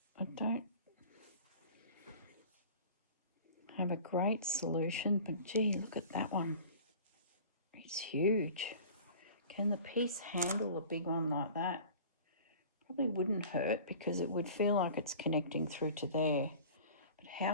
I don't have a great solution, but gee, look at that one. It's She's huge. Can the piece handle a big one like that? Probably wouldn't hurt because it would feel like it's connecting through to there. But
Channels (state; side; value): inverted; both; correlation -0.43